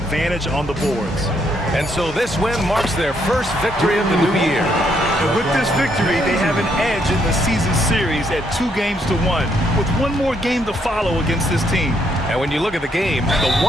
on the boards. And so this win marks their first victory of the new year. And with this victory, they have an edge in the season series at 2-1, with one more game to follow against this team. And when you look at the game, the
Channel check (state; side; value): normal; both; correlation 0.73